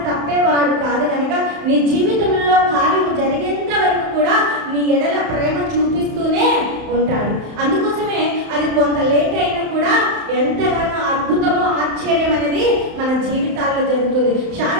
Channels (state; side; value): late; left; 31 ms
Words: తప్పేవాడు కాదు కనుక, నీ జీవితంలో కార్యము జరిగేంత వరకు కూడా నీ ఎడల ప్రేమ చూపిస్తూనే ఉంటాడు. అందుకోసమే అది కొంత లేట్ అయినా కూడా ఎంతగానో అద్భుతమో ఆశ్చర్యం అనేది మన జీవితాల్లో జరుగుతుంది.